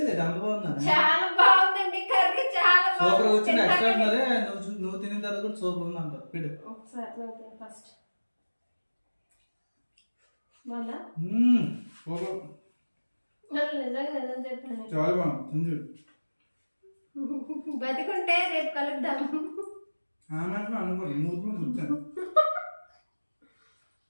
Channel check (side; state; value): both; inverted; correlation -1.00